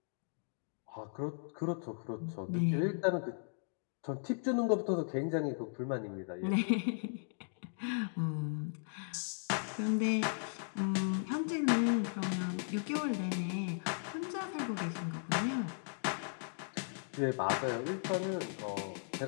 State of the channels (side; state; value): right; silent; digital silence